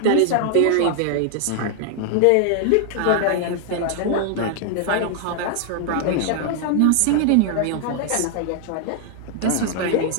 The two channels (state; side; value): different; both; correlation 0.00